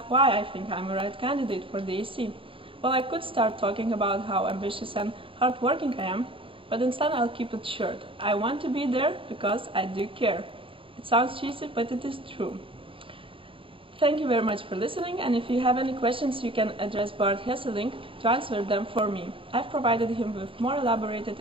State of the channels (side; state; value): left; late; 0.25 ms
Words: why I think I'm the right candidate for the AAC. Well, I could start talking about how ambitious and hardworking I am, but instead I'll keep it short. I want to be there because I do care. It sounds cheesy, but it is true. Thank you very much for listening, and if you have any questions, you can address Bart Hesselink to answer them for me. I've provided him with more elaborated